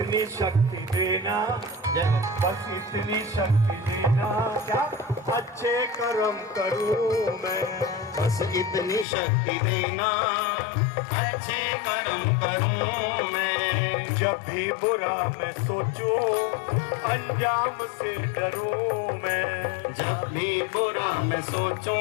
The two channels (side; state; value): right; drops out; at 9.1 s